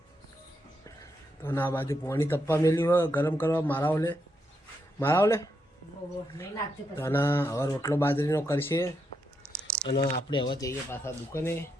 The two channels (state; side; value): normal; both; correlation 0.82